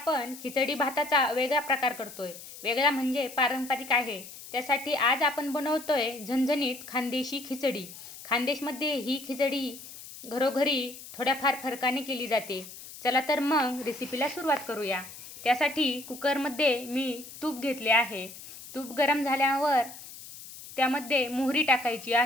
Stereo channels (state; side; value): noise; left; hiss, 15 dB below the sound